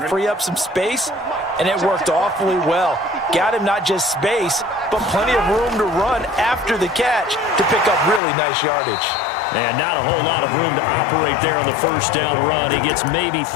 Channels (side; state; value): right; drops out; at 8.2 s